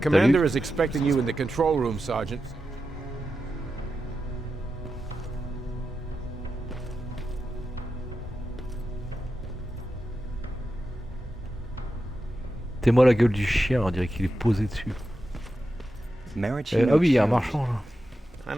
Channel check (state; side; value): normal; both; correlation 0.90